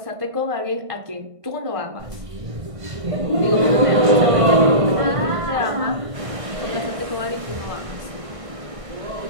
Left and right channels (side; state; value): left; late; 1.5 ms